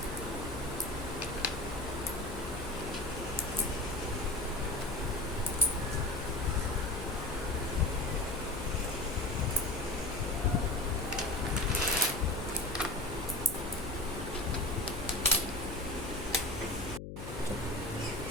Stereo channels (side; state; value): left; noise; hum, 8 dB below the sound